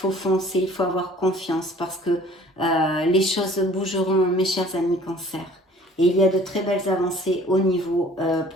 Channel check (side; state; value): both; normal; correlation 0.51